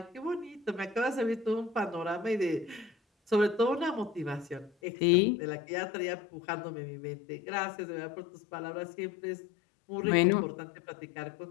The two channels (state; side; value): drops out; right; at 4.7 s